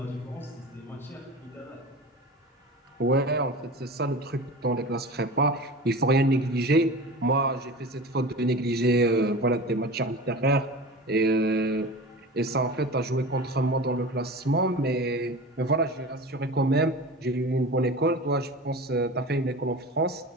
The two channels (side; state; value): both; normal; correlation 0.33